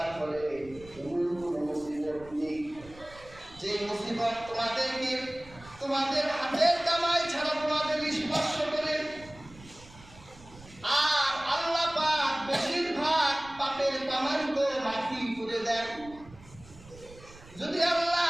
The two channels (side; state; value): right; noise; rumble, 21 dB below the sound